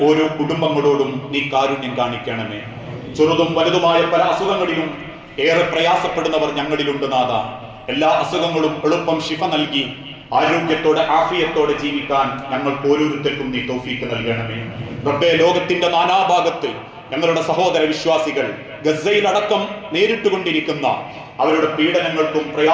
ഓരോ കുടുംബങ്ങളോടും നീ കാരുണ്യം കാണിക്കണമേ. ചെറുതും വലുതുമായ പല അസുഖങ്ങളിലും ഏറെ പ്രയാസപ്പെടുന്നവർ ഞങ്ങളിലുണ്ട് നാഥ. എല്ലാ അസുഖങ്ങളും എളുപ്പം ശിഫ നൽകി ആരോഗ്യത്തോടെ ആഫിയത്തോടെ ജീവിക്കാൻ ഞങ്ങൾക്ക് ഓരോരുത്തർക്കും നീ തൗഫീക്ക് നൽകണമേ റബ്ബേ. ലോകത്തിന്റെ നാനാഭാഗത്ത് ഞങ്ങളുടെ സഹോദര വിശ്വാസികൾ ഗസയിലടക്കം നേരിട്ടുകൊണ്ടിരിക്കുന്ന അവരുടെ പീഡനങ്ങൾക്കും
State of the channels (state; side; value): identical; both; correlation 1.00